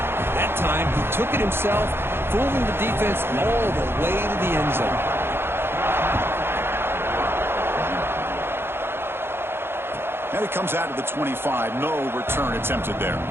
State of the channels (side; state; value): left; late; 0.11 ms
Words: That time, he took it himself, fooling the defense all the way to the end zone. And it comes out of the 25. No return attempted there.